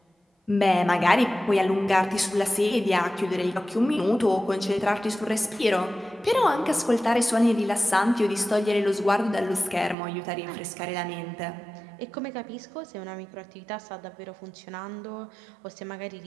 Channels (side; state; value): left; drops out; at 10.0 s